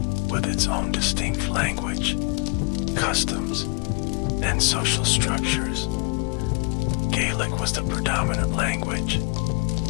with its own distinct language, customs, and social structures. Gaelic was the predominant language,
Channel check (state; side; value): quieter; right; 33.5 dB